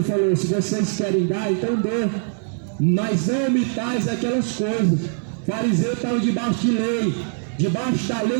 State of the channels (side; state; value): left; silent; digital silence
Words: falou: se vocês querem dar, então dê, mas não omitais aquelas coisas. Fariseu estava debaixo de lei, debaixo da